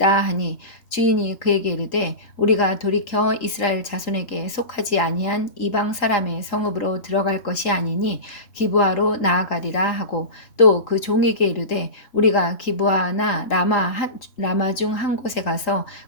하니 주인이 그에게 이르되 우리가 돌이켜 이스라엘 자손에게 속하지 아니한 이방 사람의 성읍으로 들어갈 것이 아니니 기브아로 나아가리라 하고 또 그 종에게 이르되 우리가 기브아나 라마 중 한 곳에 가서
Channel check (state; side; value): late; right; 3.8 ms